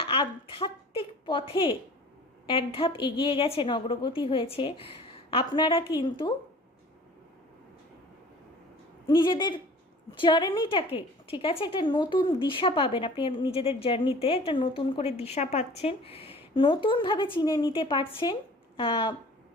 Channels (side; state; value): both; normal; correlation 0.46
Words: আধ্যাত্মিক পথে এক ধাপ এগিয়ে গেছেন, অগ্রগতি হয়েছে, আপনারা কিন্তু নিজেদের জার্নিটাকে, ঠিক আছে, একটা নতুন দিশা পাবেন। আপনি নিজেদের জার্নিতে একটা নতুন করে দিশা পাচ্ছেন, নতুনভাবে চিনে নিতে পারছেন